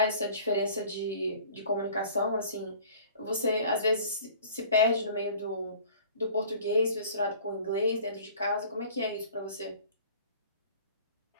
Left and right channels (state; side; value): inverted; both; correlation -0.48